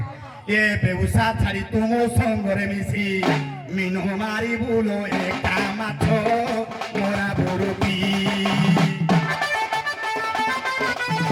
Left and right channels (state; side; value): identical; both; correlation 1.00